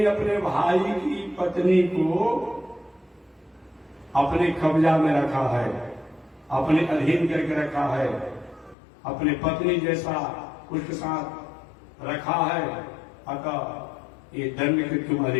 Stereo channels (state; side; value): drops out; right; at 8.8 s